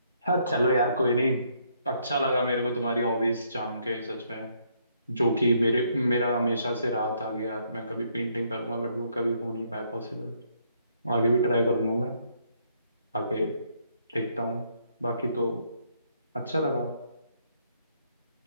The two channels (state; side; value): inverted; both; correlation -0.71